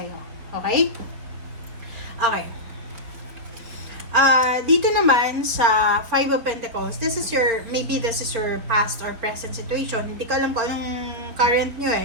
Okay? Okay. Dito naman sa Five of Pentacles, maybe this is your past or present situation. Hindi ko alam kung anong current nyo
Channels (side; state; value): left; late; 4.6 ms